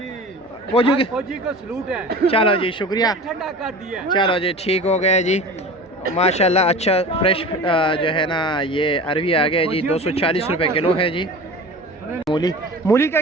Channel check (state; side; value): normal; both; correlation 0.36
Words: फौजी के, फौजी को सलूट है। चलो जी शुक्रिया, ठंडा कर दिया। चलो जी ठीक हो गया जी, माशाल्लाह अच्छा फ्रेश जो है ना ये अरवी आ गया जी, 240 रुपये किलो है जी। मूली, मूली का